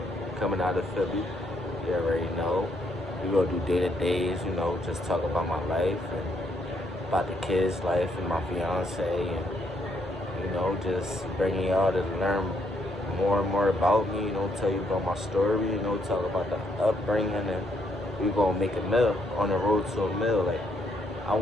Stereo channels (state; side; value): normal; both; correlation 0.73